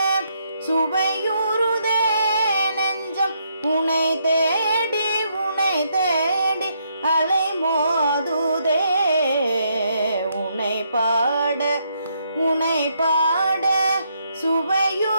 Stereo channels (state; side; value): inverted; both; correlation -0.75